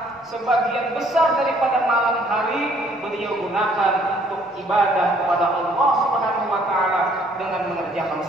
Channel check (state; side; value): normal; both; correlation 0.62